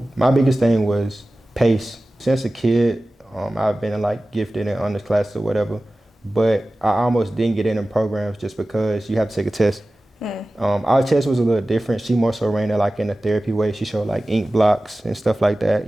my biggest thing was pace. Since a kid, I've been like gifted in honors classes or whatever, but I almost didn't get in programs just because you have to take a test. Our test was a little different. She more so ran it like in a therapy way. She showed like ink blocks and stuff like that,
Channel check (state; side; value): normal; both; correlation 0.96